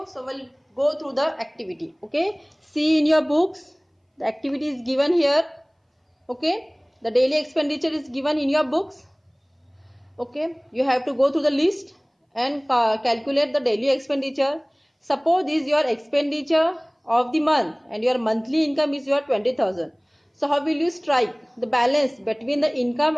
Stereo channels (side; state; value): both; identical; correlation 1.00